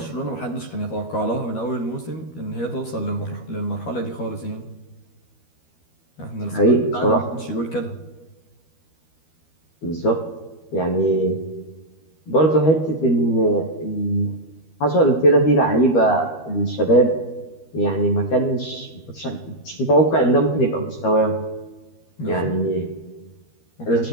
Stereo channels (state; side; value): late; right; 13 ms